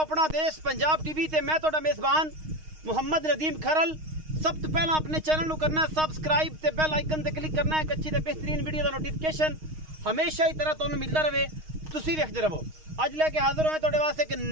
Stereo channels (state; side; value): late; left; 6.4 ms